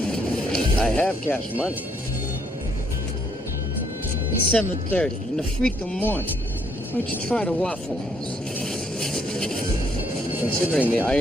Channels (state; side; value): normal; both; correlation 0.70